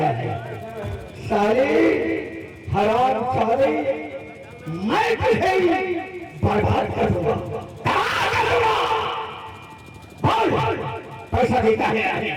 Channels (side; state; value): both; identical; correlation 1.00